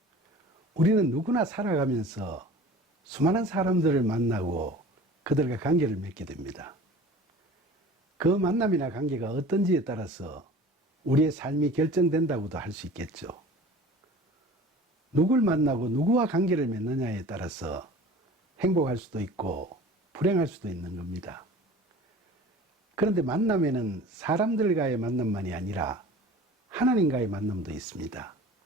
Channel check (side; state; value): both; normal; correlation 0.42